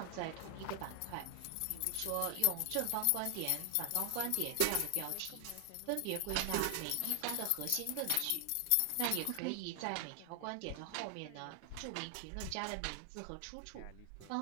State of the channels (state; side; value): different; both; correlation 0.00